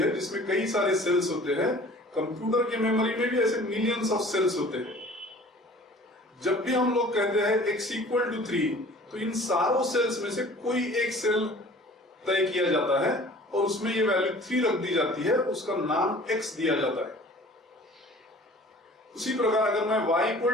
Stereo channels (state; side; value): normal; both; correlation 0.47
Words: जिसमें कई सारे सेल्स होते हैं, कंप्यूटर के मेमोरी में भी ऐसे मिलियंस ऑफ सेल्स होते हैं। जब भी हम लोग कहते हैं x = 3, तो इन सारों सेल्स में से कोई एक सेल तय किया जाता है और उसमें ये वैल्यू 3 रख दी जाती है, उसका नाम x दिया जाता है। उसी प्रकार अगर मैं y